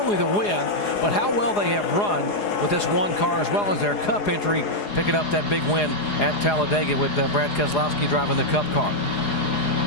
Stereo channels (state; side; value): late; right; 4.8 ms